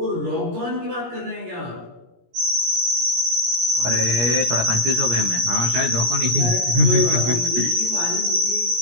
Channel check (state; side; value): late; left; 17 ms